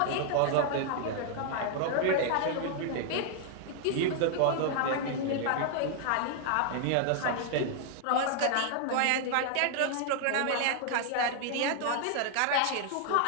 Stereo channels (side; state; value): both; different; correlation 0.00